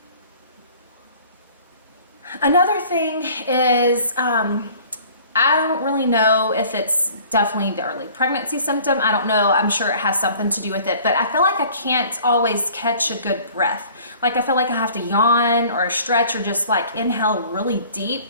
another thing is I don't really know if it's definitely the early pregnancy symptom. I don't know. I'm sure it has something to do with it, but I feel like I can't always catch a good breath. Like I feel like I have to yawn or stretch or just inhale really deep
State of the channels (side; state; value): both; inverted; correlation -0.51